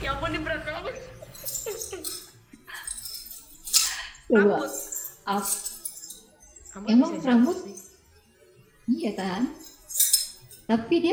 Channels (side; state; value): both; identical; correlation 1.00